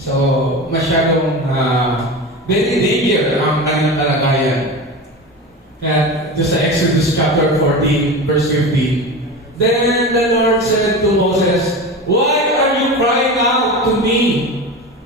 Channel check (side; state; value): both; normal; correlation 0.27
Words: masyadong very danger ang kanilang kalagayan. Kaya, just sa Exodus chapter 14, verse 15, Then the Lord said to Moses, Why are you crying out to me?